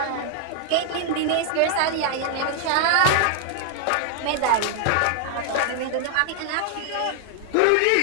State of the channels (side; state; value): both; different; correlation 0.00